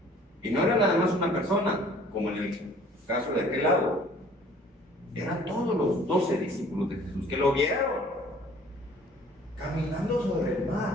Y no era nada más una persona, como en el caso de aquel lado. Eran todos los 12 discípulos de Jesús que lo vieron caminando sobre el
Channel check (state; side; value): normal; both; correlation 0.54